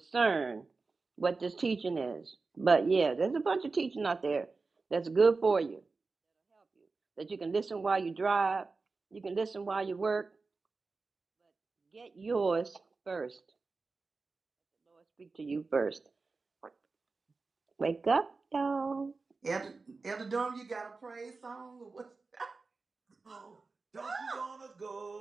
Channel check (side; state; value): left; quieter; 4.0 dB